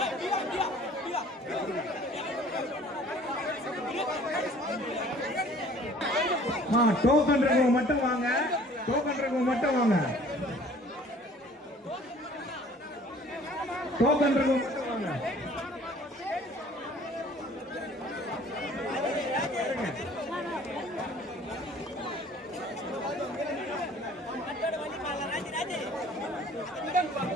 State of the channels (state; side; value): normal; both; correlation 0.52